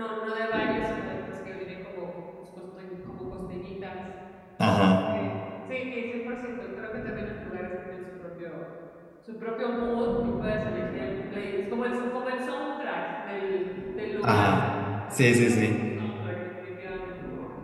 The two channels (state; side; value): identical; both; correlation 1.00